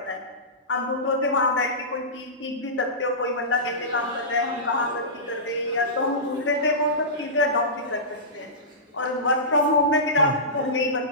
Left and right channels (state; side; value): normal; both; correlation -0.19